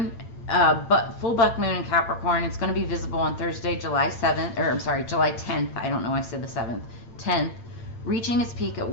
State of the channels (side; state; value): right; late; 8.9 ms